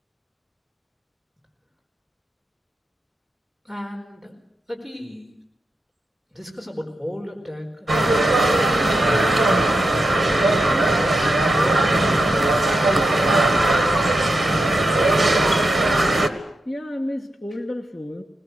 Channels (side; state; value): both; normal; correlation 0.88